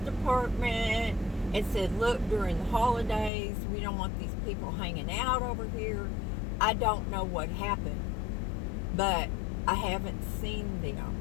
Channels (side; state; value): right; drops out; at 3.3 s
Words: and said, look, during the holidays, we don't want these people hanging out over here. I don't know what happened, but I haven't seen them.